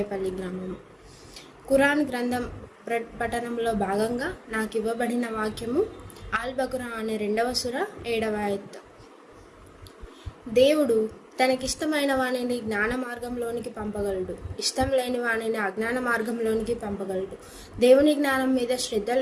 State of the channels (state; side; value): identical; both; correlation 1.00